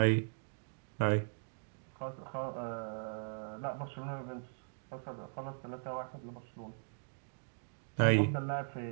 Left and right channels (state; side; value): silent; left; digital silence